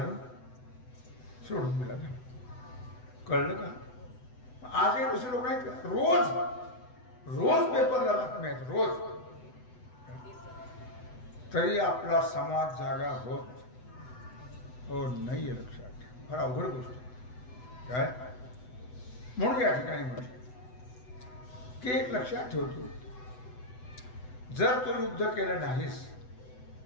सोडून दिला. कळलं का? आजही दुसरे लोक नाहीत का? रोज पेपरला बातम्या आहेत, रोज. तरी आपला समाज जागा होत हो नाहीये. लक्षात ठेवा. फार अवघड गोष्ट काय. म्हणून या ठिकाणी म्हटलं की एक लक्षात ठेवतो, जर तू युद्ध केलं नाहीस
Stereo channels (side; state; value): right; late; 8.0 ms